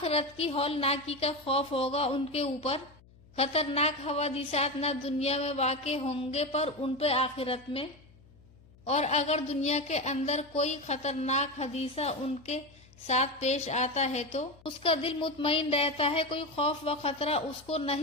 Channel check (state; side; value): noise; left; hum, 26 dB below the sound